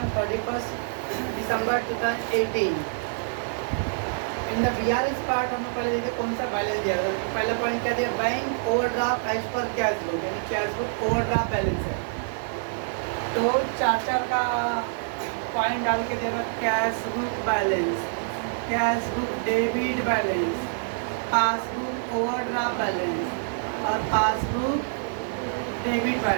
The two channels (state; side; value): silent; left; digital silence